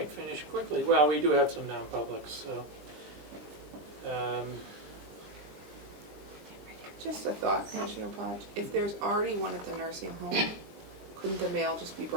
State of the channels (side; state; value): left; late; 20 ms